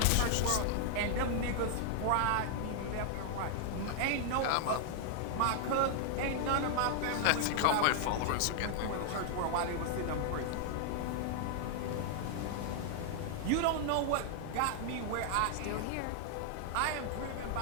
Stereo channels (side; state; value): both; different; correlation 0.00